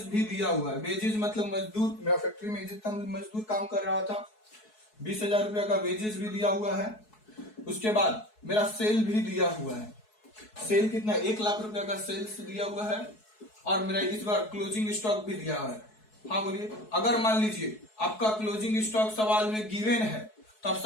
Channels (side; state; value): right; late; 4.7 ms